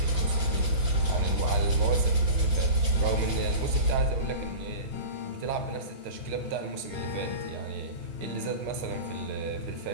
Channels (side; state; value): left; late; 5.8 ms